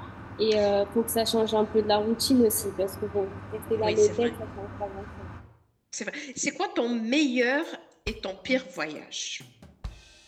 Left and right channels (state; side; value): identical; both; correlation 1.00